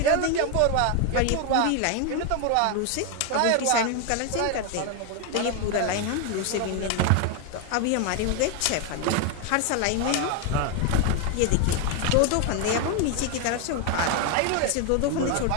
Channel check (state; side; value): different; both; correlation 0.01